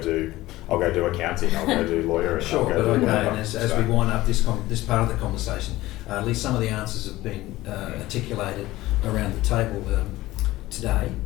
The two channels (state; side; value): quieter; right; 17.3 dB